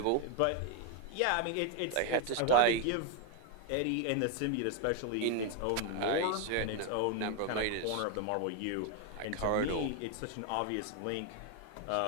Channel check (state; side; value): different; both; correlation 0.01